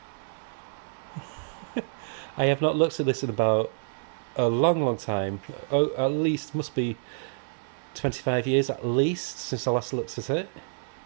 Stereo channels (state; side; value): silent; left; 59 dB below the other